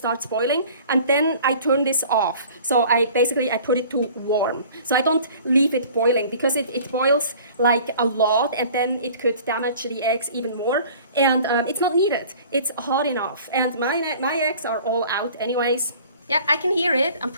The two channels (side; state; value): both; inverted; correlation -0.48